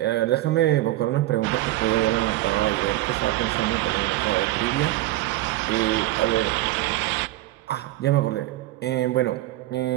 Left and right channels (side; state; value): left; quieter; 16.3 dB